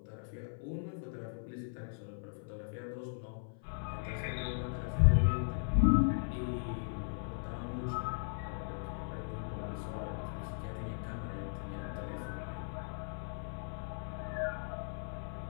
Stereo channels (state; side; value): silent; right; 53 dB below the other